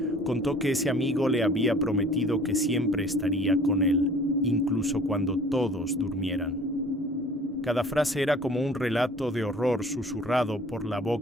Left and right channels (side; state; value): both; normal; correlation 0.50